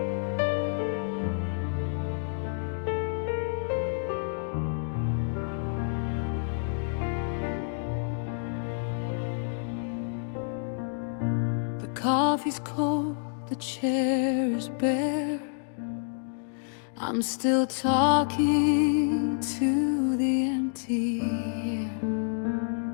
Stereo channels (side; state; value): right; silent; digital silence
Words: The coffee's cold, the chair is bare. I'm still talking to the empty air,